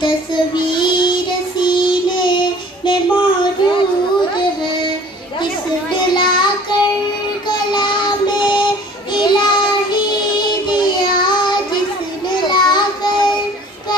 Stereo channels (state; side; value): normal; both; correlation 0.49